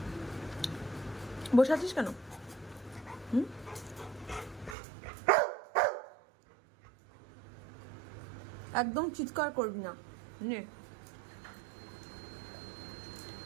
বসে আছিস কেন? একদম চিৎকার করবি না। নে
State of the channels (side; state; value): left; drops out; at 4.8 s